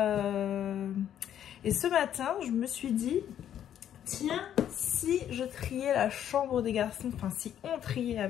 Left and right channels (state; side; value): quieter; right; 10.2 dB